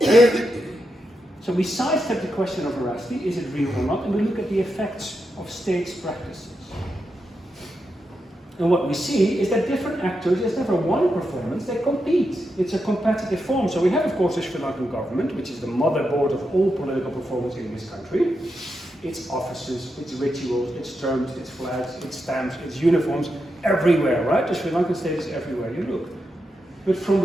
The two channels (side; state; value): both; normal; correlation 0.86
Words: So we sidestep the question of veracity, is it real or not, and we look at the effects of states' practices. And what we see is that different actors, there's never one performance, they compete. It's a competitive form. So we have, of course, the Sri Lankan government, which is the motherboard of all political performance in this country. Its offices, its rituals, its terms, its flags, its stamps, its uniforms, everywhere, right? The Sri Lankan state is everywhere you look. But from